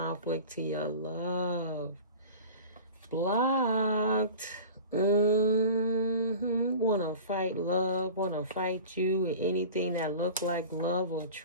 to your love. Blocked. Wanna fight love, wanna fight you and anything that look like love or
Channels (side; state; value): both; inverted; correlation -0.38